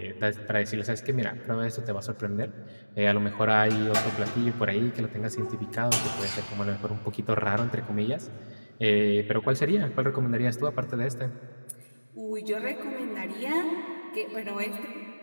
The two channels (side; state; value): both; inverted; correlation -1.00